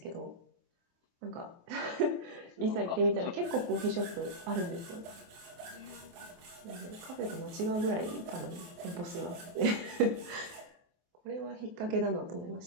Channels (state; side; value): late; left; 23 ms